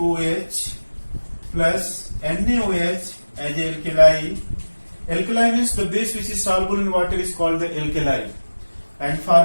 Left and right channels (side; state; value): both; inverted; correlation -1.00